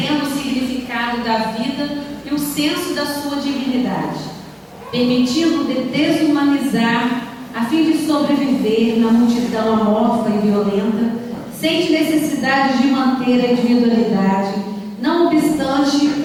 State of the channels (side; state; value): both; identical; correlation 1.00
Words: o significado da vida e o senso da sua dignidade, permitindo desumanizar a fim de sobreviver na multidão amorfa e violenta, sente necessidade de manter a individualidade, não obstante